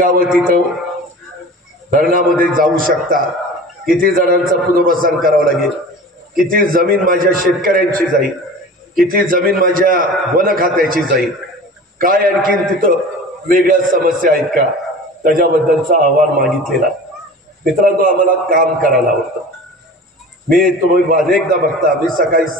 तिथं धरणामध्ये जाऊ शकतात, किती जणांचं पुनर्वसन करावं लागेल, किती जमीन माझ्या शेतकऱ्यांची जाईल, किती जमीन माझ्या वन खात्याची जाईल, काय आणखीन तिथं वेगळ्या समस्या आहेत का, त्याच्याबद्दलचा अहवाल मागितलेला. मित्रांनो, आम्हाला काम करायला आवडतं. मी तुम्ही अनेकदा बघता, मी सकाळी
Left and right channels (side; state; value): both; normal; correlation 0.38